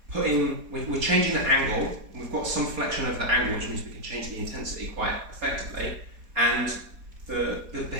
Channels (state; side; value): late; left; 4.1 ms